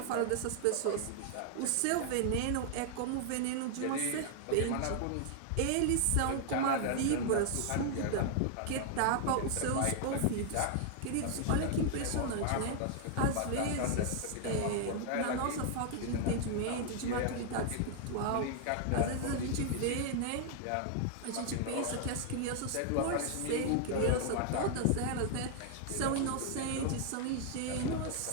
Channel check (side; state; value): both; different; correlation 0.00